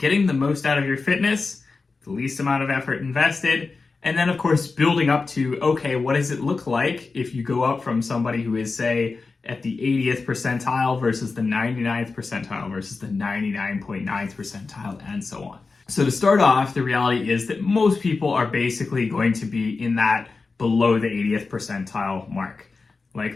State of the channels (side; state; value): right; quieter; 4.2 dB